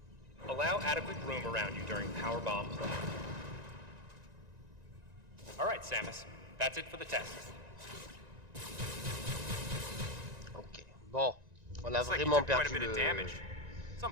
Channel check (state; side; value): late; left; 1.9 ms